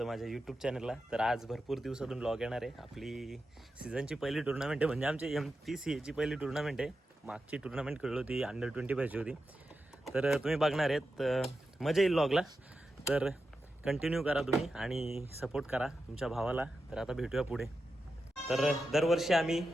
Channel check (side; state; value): both; normal; correlation 0.90